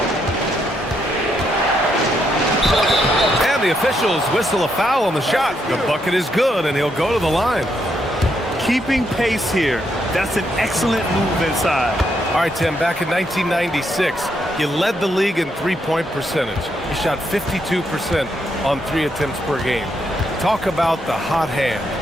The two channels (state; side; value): normal; both; correlation 0.77